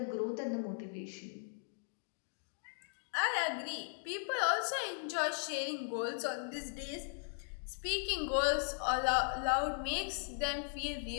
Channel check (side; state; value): right; silent; digital silence